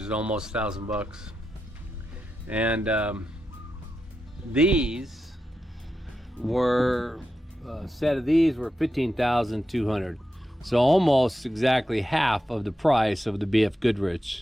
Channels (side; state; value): both; normal; correlation 0.88